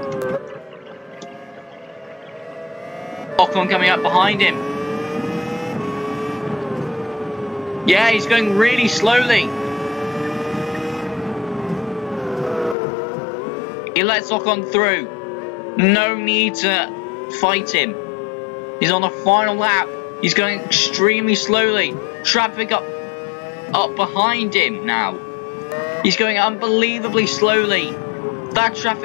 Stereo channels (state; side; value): drops out; right; at 12.8 s